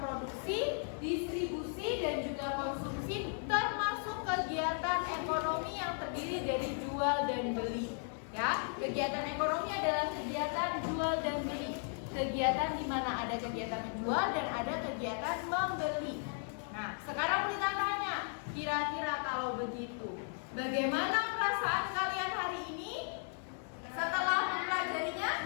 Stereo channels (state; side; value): silent; right; 54 dB below the other